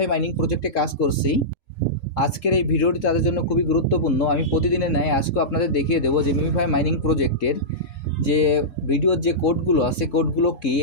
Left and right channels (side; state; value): right; late; 3.7 ms